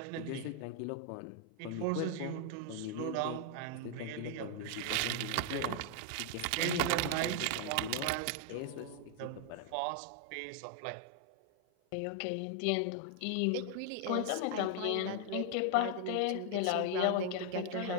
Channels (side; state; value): both; different; correlation 0.00